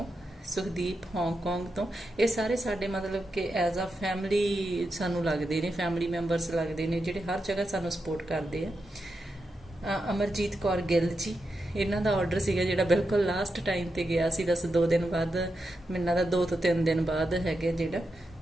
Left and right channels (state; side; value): normal; both; correlation 0.87